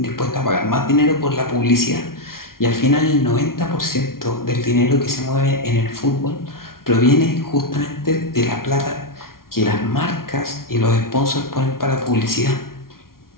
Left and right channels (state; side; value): late; right; 0.93 ms